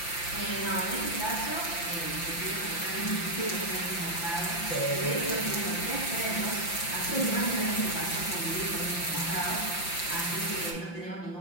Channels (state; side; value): late; right; 5.8 ms